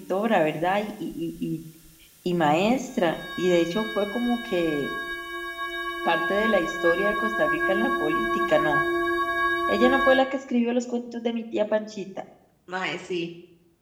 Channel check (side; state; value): both; identical; correlation 1.00